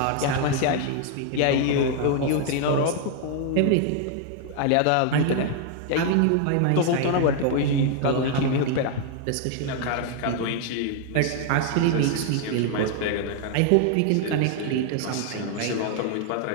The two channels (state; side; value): different; both; correlation 0.00